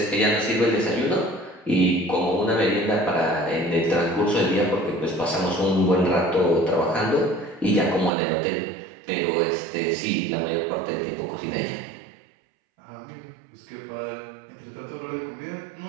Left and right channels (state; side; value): drops out; left; at 8.1 s